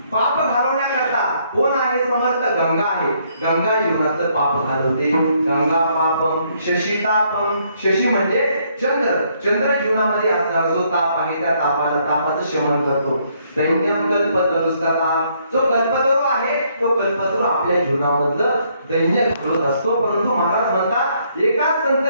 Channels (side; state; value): both; inverted; correlation -0.70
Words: पाप घालवण्याकरता कोण आहे? समर्थ गंगा आहे. गंगा जीवनाचं पाप घालवते. गंगा पापम शशी तापम. शशी म्हणजे चंद्र. चंद्र जीवनामध्ये असणारा जो ताप आहे त्या तापाचं शमन करतो. दैन्यम कल्पतरुस्तथा. जो कल्पतरू आहे तो कल्पतरू आपल्या जीवनामधलं दैन्य घालवत असतो. परंतु महाराज म्हणतात एका संत